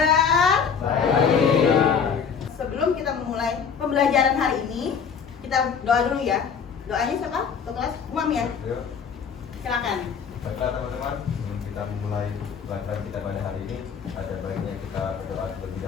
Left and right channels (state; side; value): quieter; right; 6.6 dB